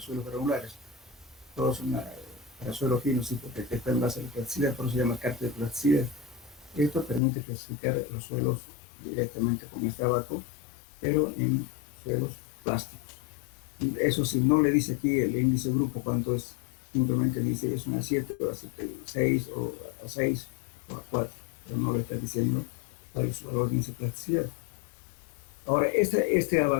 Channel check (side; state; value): right; drops out; at 7.2 s